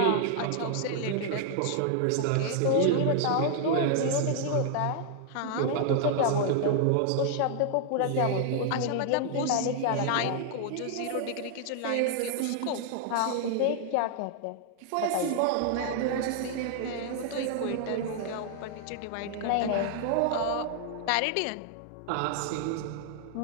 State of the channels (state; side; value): different; both; correlation 0.00